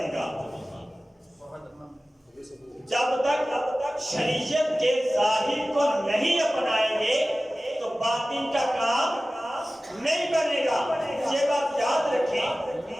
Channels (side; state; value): both; normal; correlation 0.96